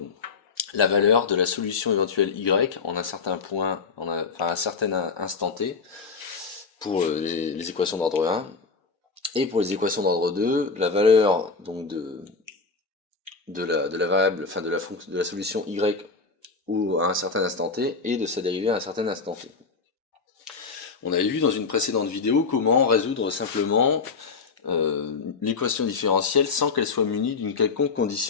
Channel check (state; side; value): quieter; right; 4.6 dB